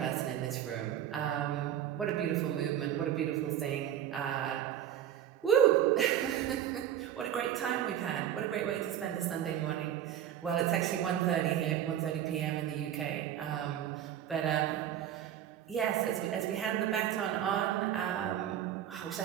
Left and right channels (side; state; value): left; quieter; 10.7 dB